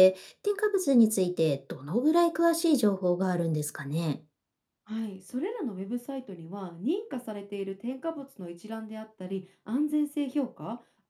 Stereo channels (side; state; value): both; identical; correlation 1.00